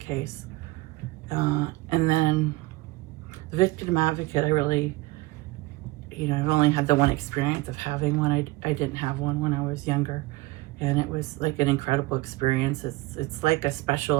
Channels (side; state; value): left; quieter; 20.9 dB